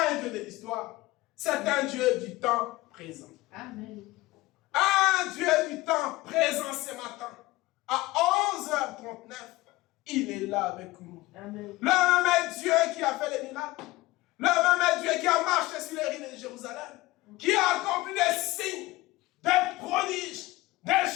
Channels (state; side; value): quieter; right; 19.4 dB